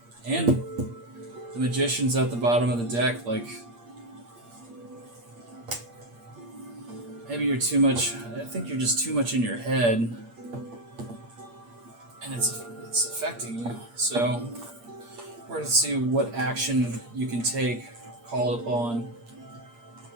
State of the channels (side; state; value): left; late; 8.6 ms